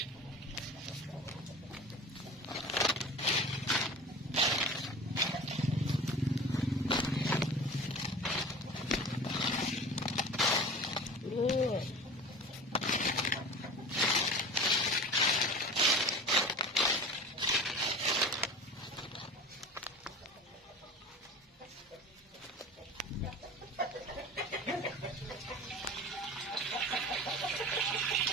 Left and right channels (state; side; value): normal; both; correlation 0.36